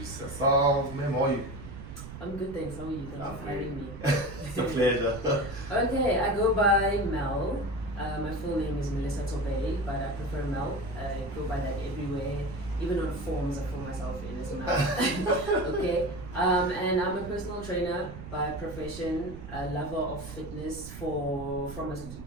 herself. Ma'am, how are you? I'm good, thanks. How are you? Thanks for having me. It's a pleasure. Okay, I go by Mel. My full name is Melissa Tobey, but I prefer Mel. I go by that everywhere. Even on forms, I call myself in as Mel. Okay, and I'm a personal trainer by profession, a lover of fitness from as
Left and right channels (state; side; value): noise; right; rumble, 12 dB below the sound